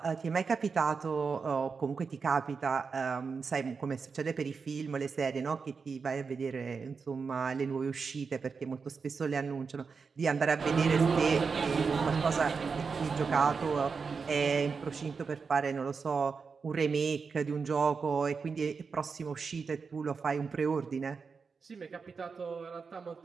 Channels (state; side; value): quieter; left; 5.2 dB